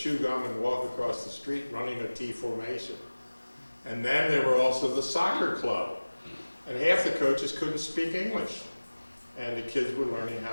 gum and walk across the street running a T formation. And then there were also the soccer club, and half the coaches couldn't speak English, and the kids were learning how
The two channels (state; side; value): inverted; both; correlation -1.00